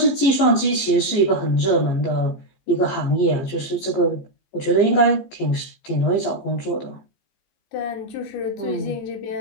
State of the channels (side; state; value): right; late; 15 ms